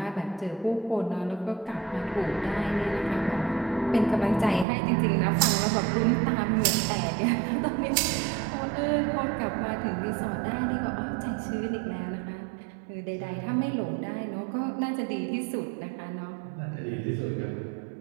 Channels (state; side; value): drops out; left; at 4.7 s